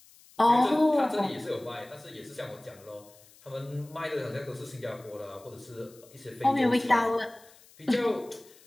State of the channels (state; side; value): noise; left; hiss, 26 dB below the sound